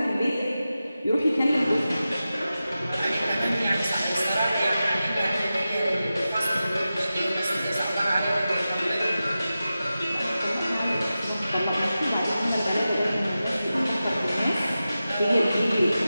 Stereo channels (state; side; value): inverted; both; correlation -0.93